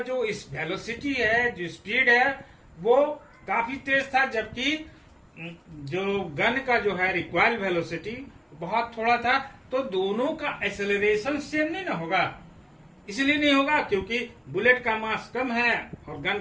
जो इस वेलोसिटी है, जो स्पीड है, वो काफी तेज था, जबकि जो गन का जो है रिक्वायर्ड वेलोसिटी बहुत थोड़ा था। तो दोनों का एक्सेलरेशन सेम नहीं ना होगा, इसलिए नहीं होगा क्योंकि बुलेट का मास कम है और गन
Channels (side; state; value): both; identical; correlation 1.00